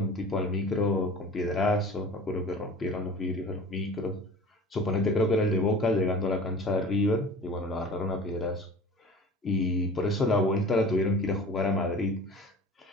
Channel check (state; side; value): normal; both; correlation 0.42